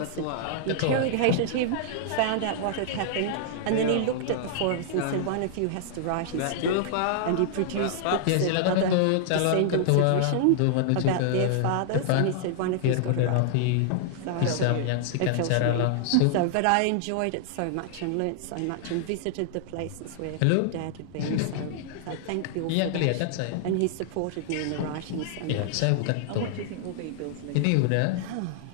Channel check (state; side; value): different; both; correlation -0.01